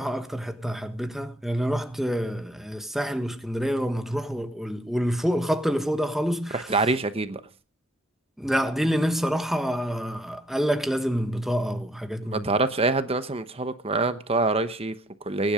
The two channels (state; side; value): normal; both; correlation 0.66